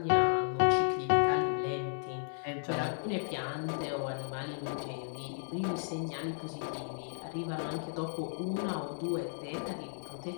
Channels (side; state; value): right; silent; 55 dB below the other